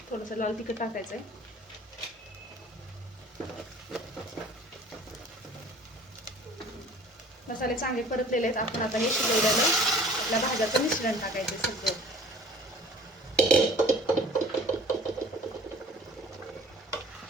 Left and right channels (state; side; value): normal; both; correlation 0.47